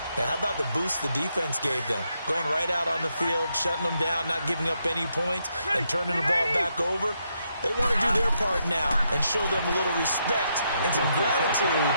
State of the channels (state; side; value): inverted; both; correlation -0.79